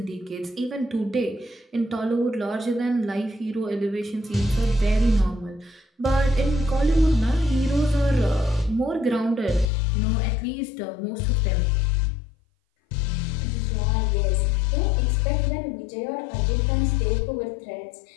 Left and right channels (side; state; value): right; drops out; at 9.7 s